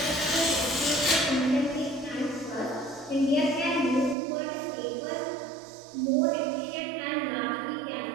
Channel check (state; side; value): drops out; left; at 4.2 s